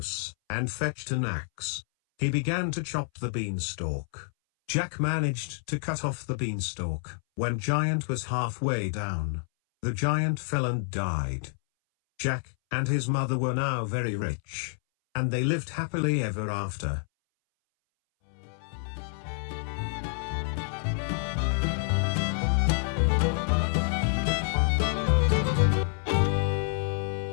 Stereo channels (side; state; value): right; silent; 59 dB below the other